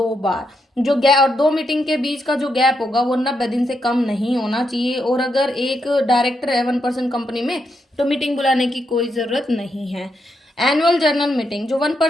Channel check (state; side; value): normal; both; correlation 0.81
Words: बार। जो गैप, और 2 मीटिंग के बीच का जो गैप होगा वो 90 दिन से कम नहीं होना चाहिए। और अगर एक डायरेक्टर है 1% कंपनी में तो मीटिंग बुलाने की कोई जरूरत नहीं है। एनुअल जनरल मीटिंग, जो